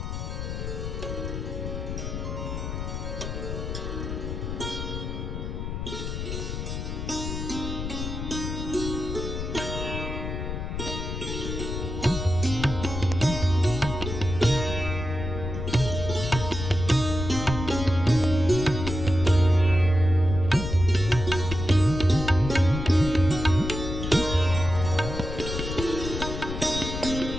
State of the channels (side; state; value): left; noise; rumble, 5 dB below the sound